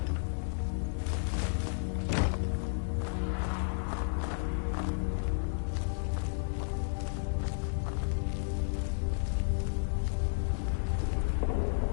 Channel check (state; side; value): silent; right; digital silence